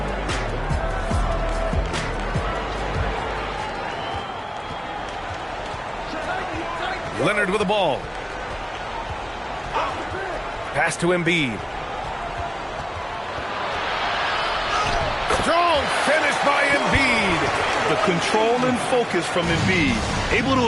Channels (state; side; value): identical; both; correlation 1.00